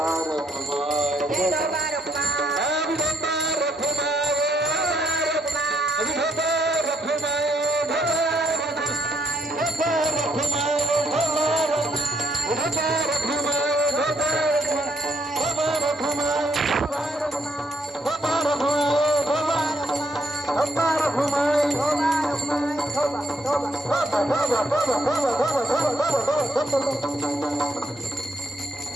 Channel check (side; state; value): both; normal; correlation 0.72